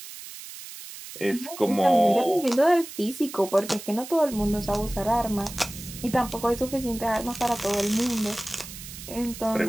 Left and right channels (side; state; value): right; noise; hiss, 13 dB below the sound